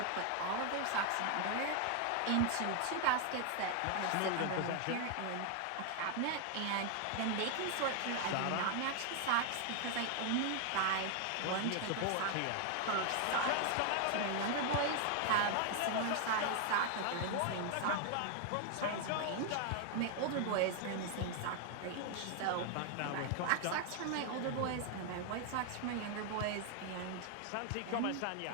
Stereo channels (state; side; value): different; both; correlation 0.00